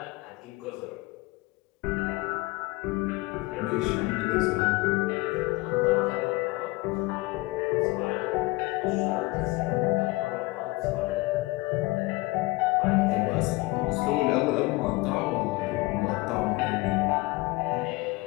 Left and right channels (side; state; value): right; quieter; 22.6 dB